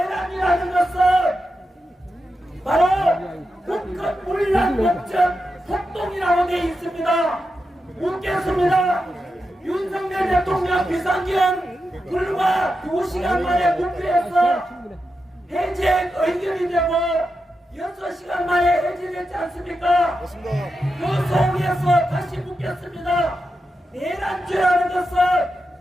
것은 바로 국헌 문란 목적 폭동이라고 되어 있습니다. 묻겠습니다. 윤석열 대통령 비상기업 불과 2시간 만에 국회에서 해제 의견이 되고 6시간 만에 해제됐지 않습니까? 그 속에서 다시 묻겠습니다. 내란죄라는 것은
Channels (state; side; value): normal; both; correlation 0.88